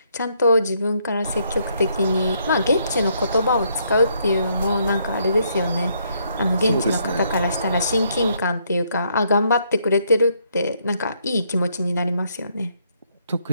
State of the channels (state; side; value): inverted; both; correlation -0.72